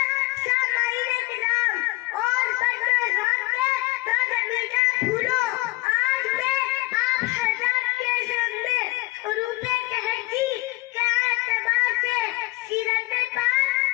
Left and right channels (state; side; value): quieter; right; 21.5 dB